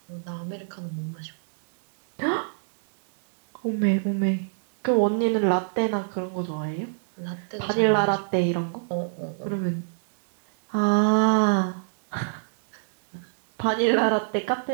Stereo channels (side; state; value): left; silent; digital silence